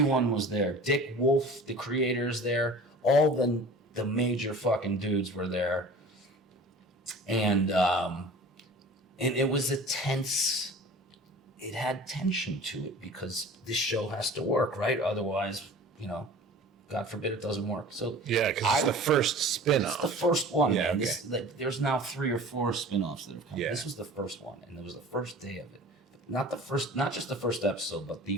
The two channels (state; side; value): normal; both; correlation 0.41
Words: was there. Dick Wolf, the creator's there. All the major fucking dudes were there. And it was a tense, it had tension to it because this show has to work, right? Otherwise, God forbid it doesn't work. So yeah, because it's the first spin-off. It's the first one. Yeah, man. okay. There's now 3 or 4 spin-offs that have come. Yeah. This was the first one, and it was the first day of it. Not just the first episode, but the